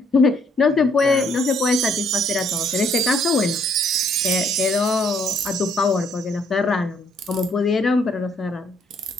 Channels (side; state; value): both; normal; correlation 0.67